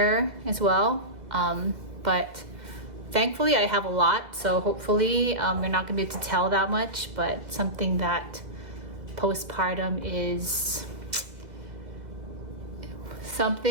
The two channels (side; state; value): left; late; 2.0 ms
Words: as well, but thankfully I have a lot, so hopefully you're not gonna be able to tell that much. But something that postpartum is